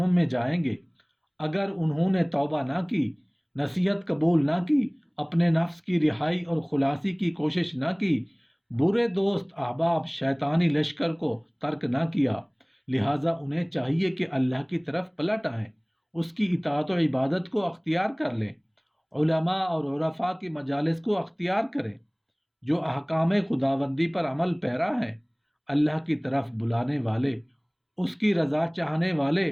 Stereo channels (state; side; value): identical; both; correlation 1.00